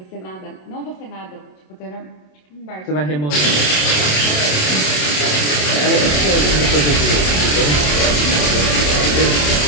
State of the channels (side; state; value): right; late; 27 ms